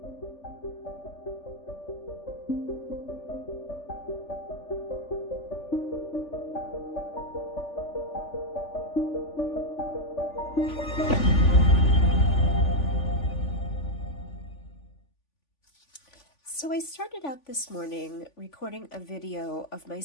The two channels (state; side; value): late; right; 3.5 ms